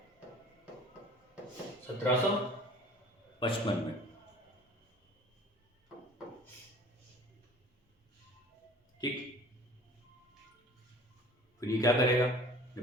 1755 में। ठीक। फिर ये क्या करेगा,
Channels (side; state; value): both; normal; correlation 0.47